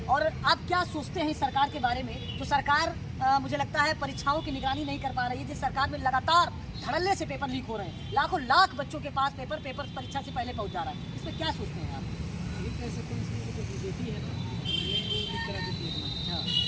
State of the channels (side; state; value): both; identical; correlation 1.00